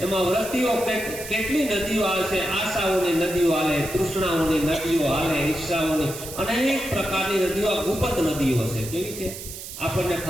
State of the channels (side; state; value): right; noise; hiss, 11 dB below the sound